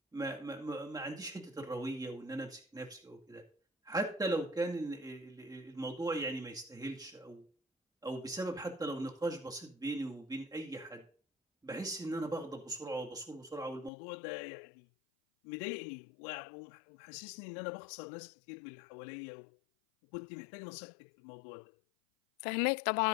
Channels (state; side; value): drops out; right; at 13.9 s